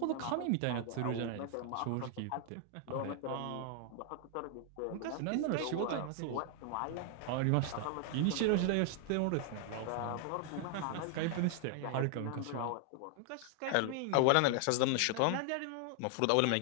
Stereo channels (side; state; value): both; different; correlation 0.00